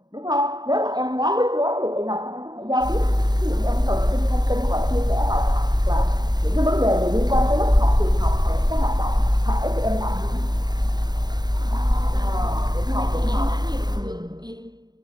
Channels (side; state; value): left; late; 0.20 ms